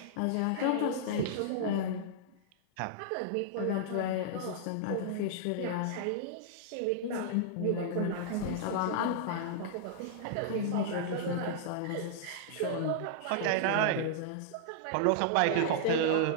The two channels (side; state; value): both; different; correlation -0.02